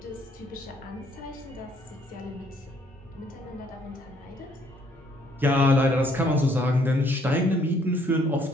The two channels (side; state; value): both; normal; correlation 0.65